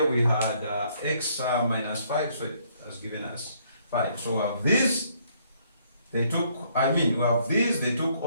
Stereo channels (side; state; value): both; inverted; correlation -0.67